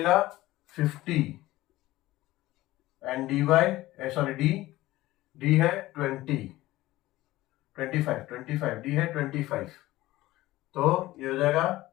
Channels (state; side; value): quieter; right; 17.2 dB